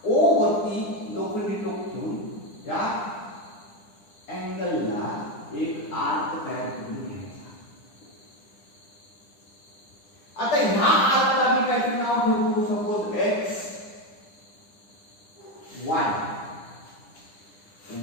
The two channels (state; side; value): late; right; 9.9 ms